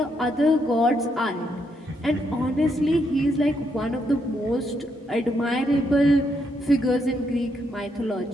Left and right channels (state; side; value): normal; both; correlation 0.77